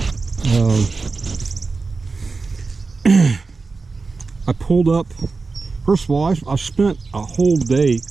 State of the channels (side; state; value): left; quieter; 4.2 dB